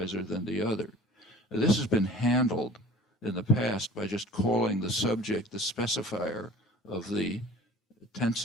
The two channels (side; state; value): both; normal; correlation 0.44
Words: than the other. This has been handled in the past by just calling the subject the specifier of the tense